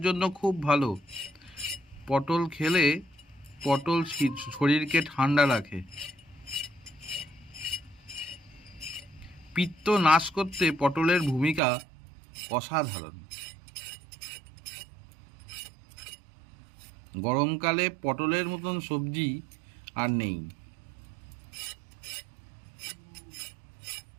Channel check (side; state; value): left; drops out; at 11.6 s